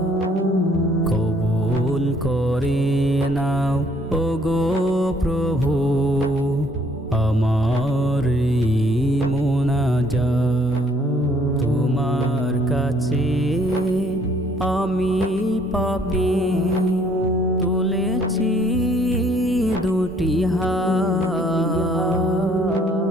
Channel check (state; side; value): normal; both; correlation 0.62